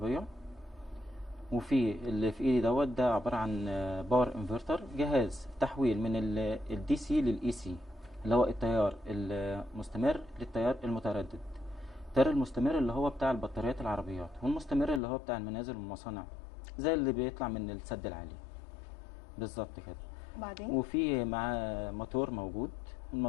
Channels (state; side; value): drops out; right; at 15.0 s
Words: وفي اللي في ايدي دوت ده عبارة عن باور انفرتر، جهاز تحويل من الدي سي للاي سي، اللي هو التيار المستمر للتيار المتردد. التيار المستمر اللي هو بتاع البطاريات العربيات، والمستمر اللي هو بتاع المنازل والمصانع، زي اللي بيطلع من السد العالي بالظبط كده. وبعدين؟ وفي معاه موتور موجود،